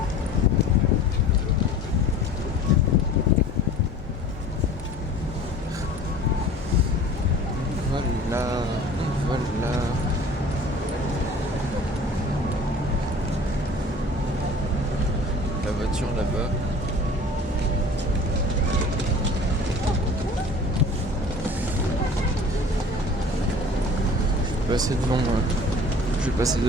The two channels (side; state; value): both; normal; correlation 0.45